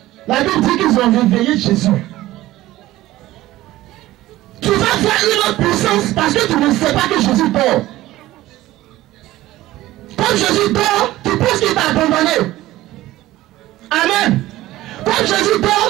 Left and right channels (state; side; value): quieter; left; 16.2 dB